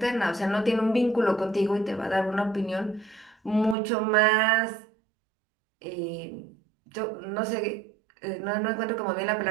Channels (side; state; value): left; drops out; at 3.8 s